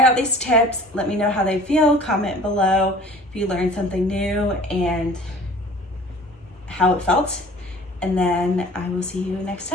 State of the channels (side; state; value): both; normal; correlation 0.47